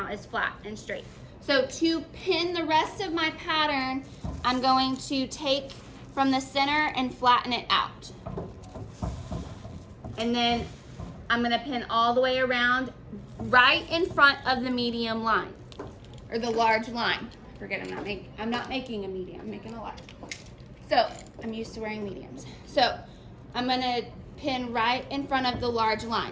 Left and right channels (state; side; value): identical; both; correlation 1.00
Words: is flat and straight. So to pin the rest of my pattern, I'm going to take from the center and flatten it out. And then I'm going to pin all the way around right in front of the medium line or the large line. Forget I'm not making a medium, I'm making a large. So I'm used to wearing mediums. So I'm going to pin right in front of the large